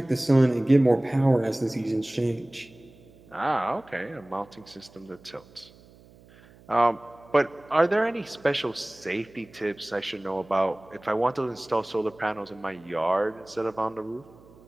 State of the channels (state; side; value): noise; right; hum, 25 dB below the sound